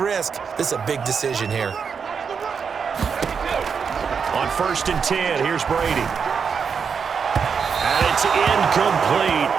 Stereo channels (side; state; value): left; quieter; 6.2 dB